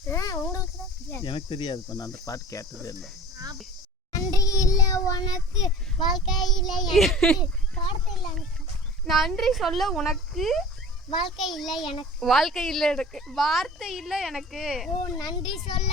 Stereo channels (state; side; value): normal; both; correlation 0.41